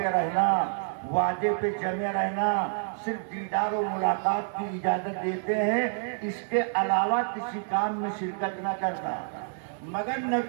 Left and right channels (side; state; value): left; silent; 59 dB below the other